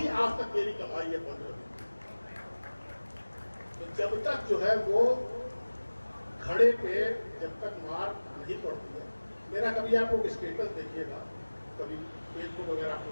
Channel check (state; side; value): inverted; both; correlation -1.00